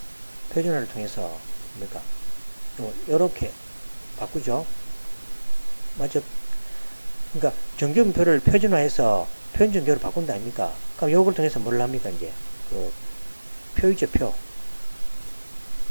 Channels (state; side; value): inverted; both; correlation -1.00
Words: 뭡니까? 요렇게 바꾸죠. 맞죠? 그러니까 정규분표를 표준화해서 표준정규로 바꾼다 아닙니까? 그럼 요걸 통해서 뭘 합니까? 이제 그 표이죠,